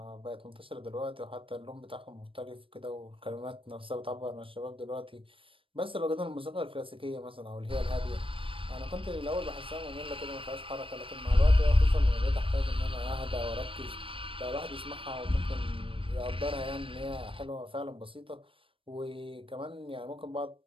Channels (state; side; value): late; left; 0.26 ms